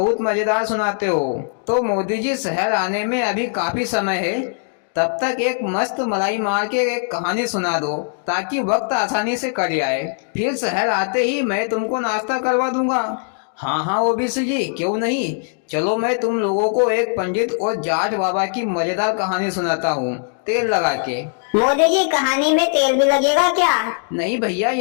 मजेदार सुनाते हो। तो मोदी जी, शहर आने में अभी काफी समय है। तब तक एक मस्त मलाई मार के एक कहानी सुना दो, ताकि वक्त आसानी से कट जाए। फिर शहर आते ही मैं तुमको नाश्ता करवा दूंगा। हाँ हाँ ओबीसी जी, क्यों नहीं। चलो, मैं तुम लोगों को एक पंडित और जाट बाबा की मजेदार कहानी सुनाता हूँ, तेल लगा के। मोदी जी, कहानी में तेल भी लगेगा क्या? नहीं भैया,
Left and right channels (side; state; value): right; silent; digital silence